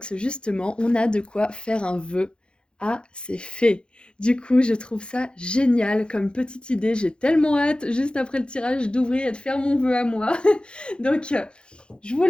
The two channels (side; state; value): right; late; 0.053 ms